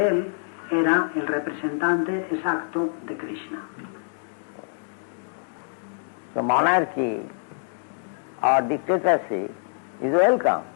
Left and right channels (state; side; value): silent; right; digital silence